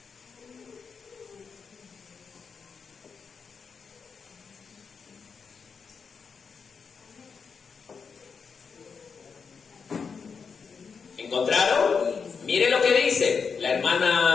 ¿Encontraron? Mire lo que dice. La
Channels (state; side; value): quieter; right; 5.7 dB